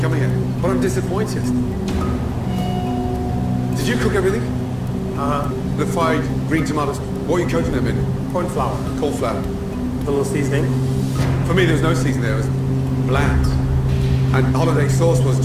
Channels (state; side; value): identical; both; correlation 1.00